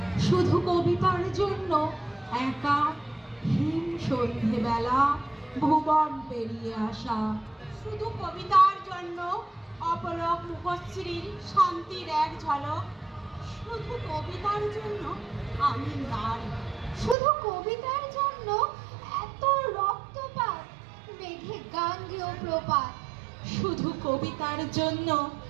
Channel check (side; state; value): left; drops out; at 17.2 s